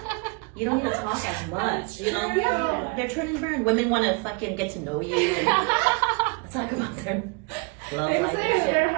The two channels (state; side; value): quieter; left; 30.7 dB